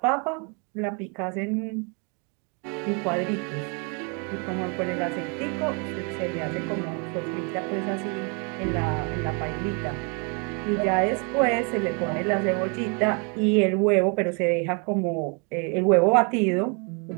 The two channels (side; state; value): left; quieter; 35.5 dB